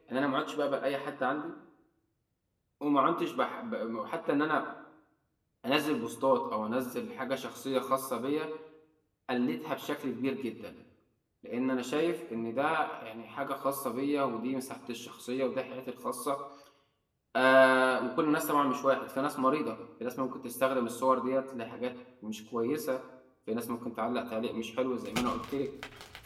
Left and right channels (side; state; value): both; identical; correlation 1.00